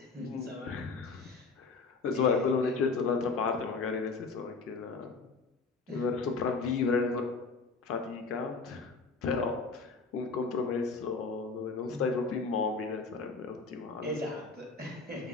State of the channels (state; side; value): quieter; right; 4.3 dB